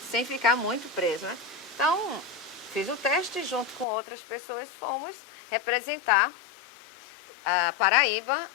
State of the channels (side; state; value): right; drops out; at 3.9 s